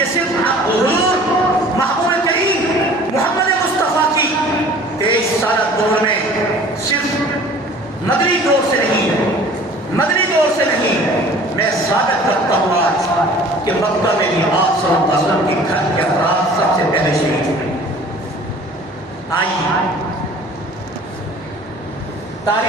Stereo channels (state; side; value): normal; both; correlation 0.48